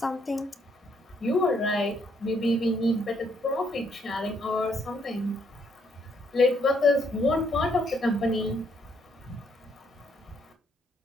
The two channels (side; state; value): both; normal; correlation 0.71